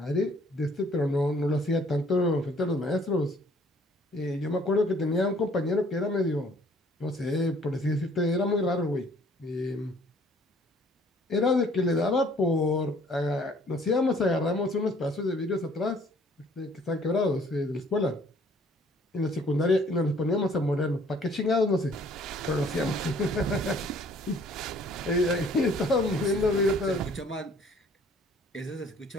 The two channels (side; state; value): both; normal; correlation 0.58